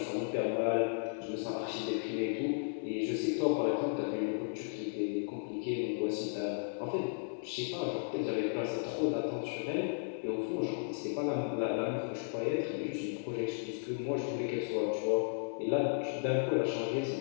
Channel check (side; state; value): right; silent; digital silence